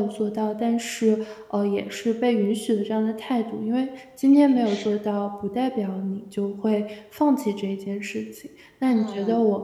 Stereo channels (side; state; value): both; identical; correlation 1.00